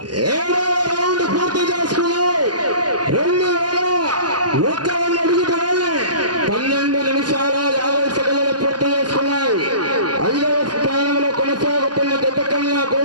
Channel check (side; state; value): left; late; 0.70 ms